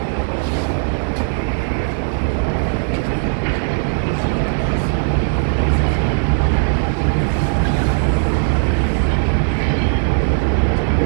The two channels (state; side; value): silent; left; digital silence